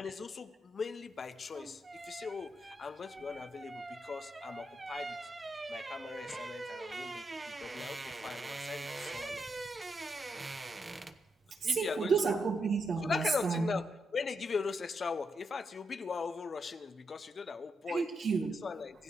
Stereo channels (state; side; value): normal; both; correlation 0.82